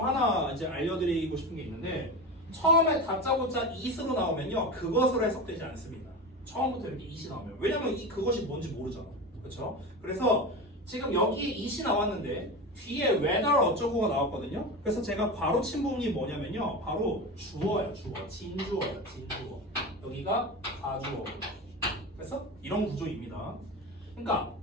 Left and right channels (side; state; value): both; normal; correlation 0.25